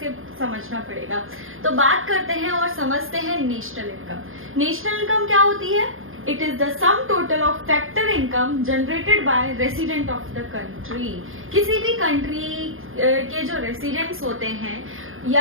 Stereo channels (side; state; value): left; late; 0.60 ms